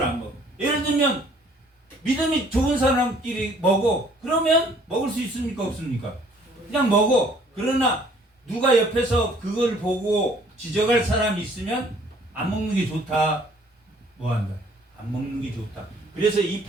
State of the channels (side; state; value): both; normal; correlation 0.58